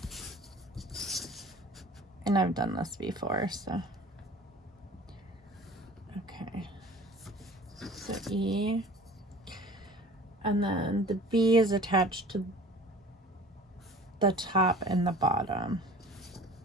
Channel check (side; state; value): both; normal; correlation 0.44